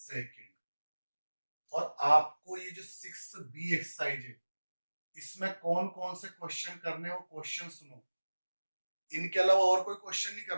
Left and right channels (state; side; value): inverted; both; correlation -1.00